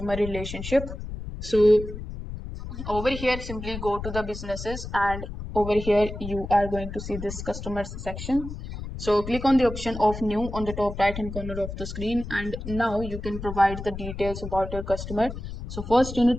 relationship. So over here, simply go to the businesses, and over here you are going to see this customers section. So click on the option of new on the top right hand corner of the screen, and now you can provide the details about your customer. So first you need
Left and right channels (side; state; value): left; noise; rumble, 8 dB below the sound